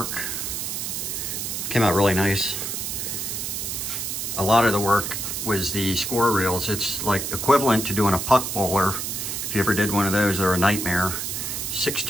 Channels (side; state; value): right; noise; hiss, 3 dB below the sound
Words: Came out really nice. A lot of the work was the score reels. It's like equivalent to doing a puck bowler. If you ever did one of those, they're a nightmare.